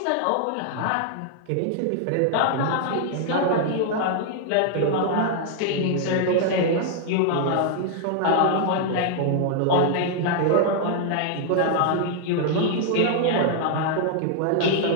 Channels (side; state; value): both; different; correlation -0.01